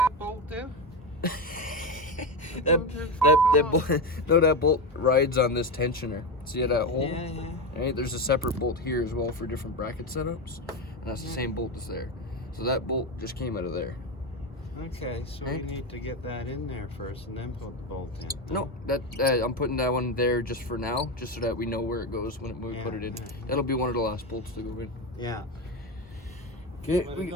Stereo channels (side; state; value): both; normal; correlation 0.16